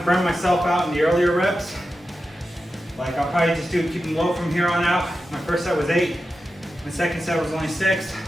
burn myself out in the earlier reps. Like I'll probably just keep them low from here on out. My first set was 8. My second set was only 6.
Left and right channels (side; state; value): both; normal; correlation 0.91